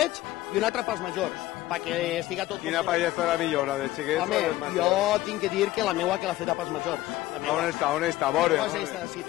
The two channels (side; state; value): right; quieter; 16.4 dB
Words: i una altra pels majors, perquè estiga tot... Quina paella estarà millor, la de xiquets o dels majors? Jo tinc que dir que la meua que l'ha feta pels majors. On està? A veure. Si